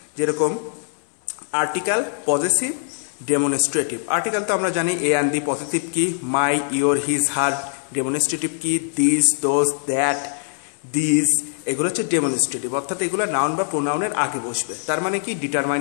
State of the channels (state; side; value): silent; right; 64 dB below the other